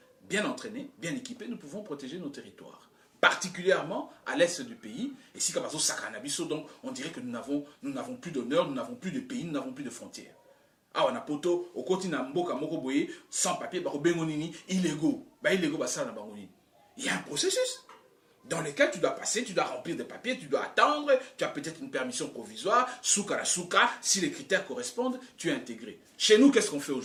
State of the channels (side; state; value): both; identical; correlation 1.00